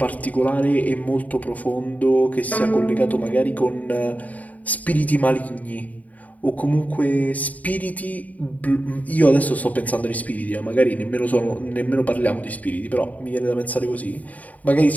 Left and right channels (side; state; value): right; late; 0.073 ms